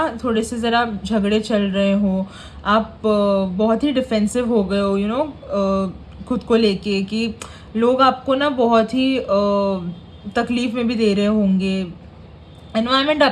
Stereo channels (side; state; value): both; identical; correlation 1.00